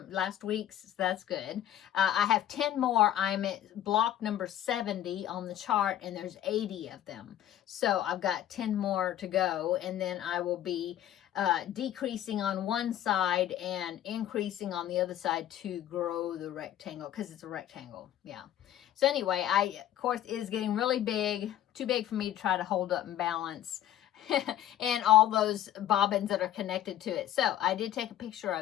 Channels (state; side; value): quieter; right; 11.9 dB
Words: week's. So that's good. I have 10 more. I'm at block number 70 on the chart, and there's 80 of them. So I've got 10 more to go, and then I will be decreasing on one side and increasing on the other side to grow the rectangle, because it's a rectangle. Yeah. So anyway, of course, it is getting really big, too big for me to try to hold up and balance. and all those bobbins that are connected to it. So I did take a picture